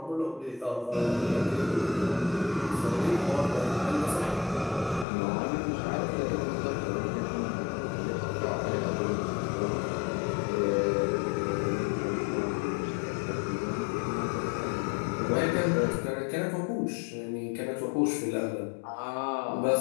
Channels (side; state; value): right; drops out; at 5.1 s